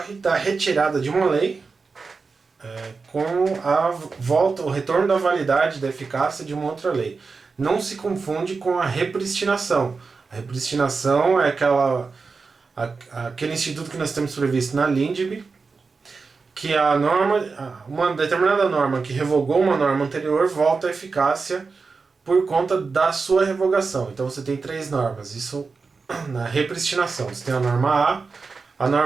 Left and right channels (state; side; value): quieter; left; 4.6 dB